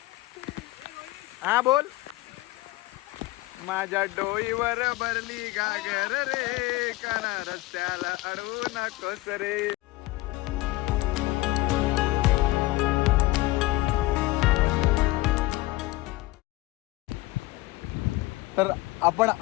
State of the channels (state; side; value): quieter; right; 19.5 dB